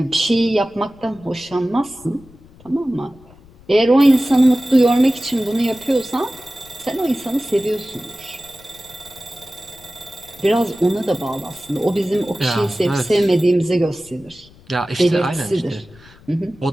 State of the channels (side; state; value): left; noise; rumble, 25 dB below the sound